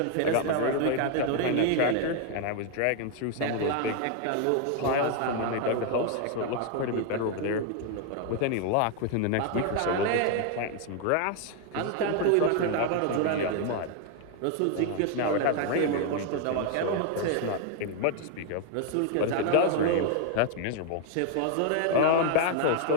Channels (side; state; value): both; different; correlation 0.00